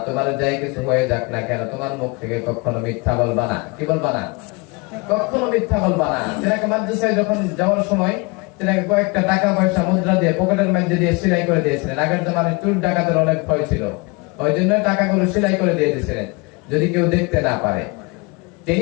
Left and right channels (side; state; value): right; quieter; 27.9 dB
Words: তোমার যাই কিছু হয়ে যাক না কেন, তোমার মুখ থেকে কখনো মিথ্যা বলবা না। কি বলবা না? কখনো মিথ্যা বলবা না। তিনাকে মাদ্রাসায় যখন যাওয়ার সময় তিনাকে কয়েকটা টাকা পয়সা মুদ্রা দিয়ে পকেটের মধ্যে দিয়ে সেলাই করে দিয়েছিলেন। আগের জমানায় চোর ডাকাতের অনেক ভয় ছিল, ওই জন্য টাকাগুলো সেলাই করে দিয়ে দিয়েছিলেন যদি কেউ দেখতে না পারে। তিনি